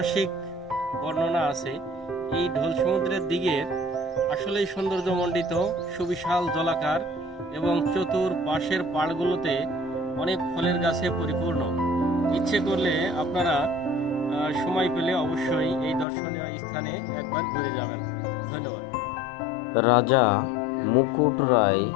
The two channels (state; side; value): drops out; right; at 16.1 s